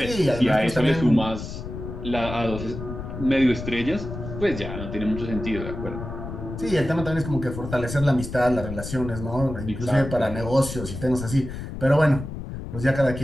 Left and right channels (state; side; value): noise; left; rumble, 8 dB below the sound